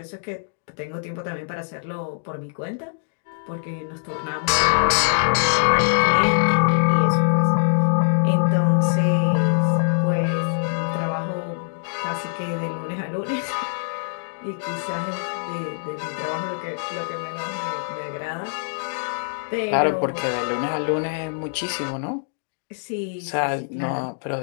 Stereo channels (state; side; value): silent; right; digital silence